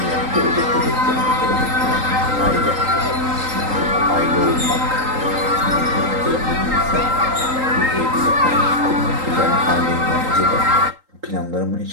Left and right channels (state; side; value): late; left; 3.8 ms